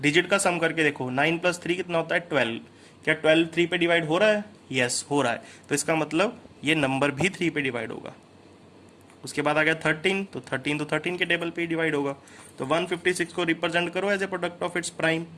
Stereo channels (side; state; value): both; identical; correlation 1.00